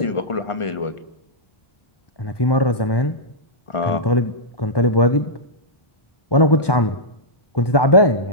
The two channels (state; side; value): late; right; 1.2 ms